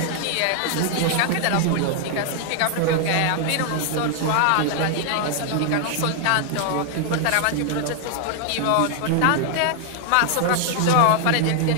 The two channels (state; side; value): different; both; correlation 0.00